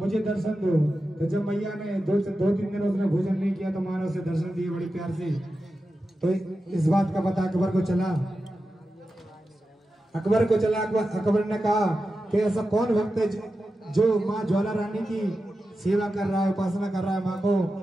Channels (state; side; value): normal; both; correlation 0.92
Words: दर्शन दो। तो जब मैया ने दो तीन दिन उसने भोजन नहीं किया तो माँ ने उसे दर्शन दिए बड़ी प्यार से। तो इस बात का पता अकबर को चला। अकबर ने कहा कि ऐसा कौन भक्त है जो माँ ज्वाला रानी की सेवा कर रहा है, उपासना कर रहा है, माँ को